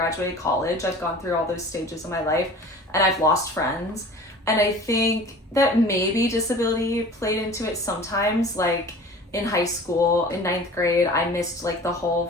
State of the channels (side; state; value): both; normal; correlation 0.42